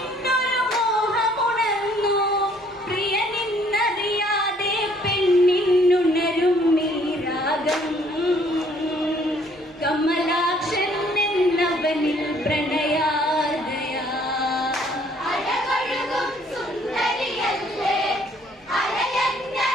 മോഹമുണർന്നു പ്രിയനിന്നറിയാതെ പെണ്ണിനുണരും മീരാഗം കമലാക്ഷൻ എന്നവനിൽ പ്രണയാദയാ അഴകൊഴുകും സുന്ദരിയല്ലേ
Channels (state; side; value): normal; both; correlation 0.62